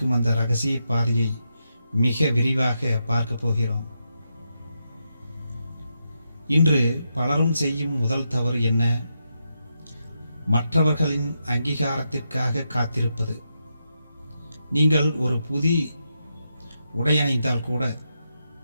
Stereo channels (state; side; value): inverted; both; correlation -0.84